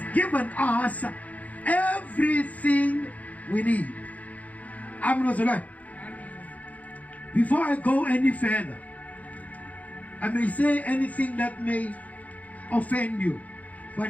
given us everything we need. Amen. Before I go any further, I may say anything that may offend you,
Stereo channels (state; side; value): late; right; 0.073 ms